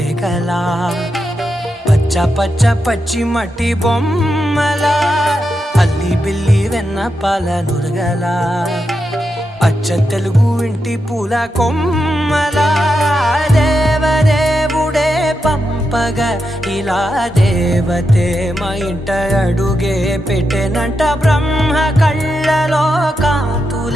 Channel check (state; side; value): normal; both; correlation 0.86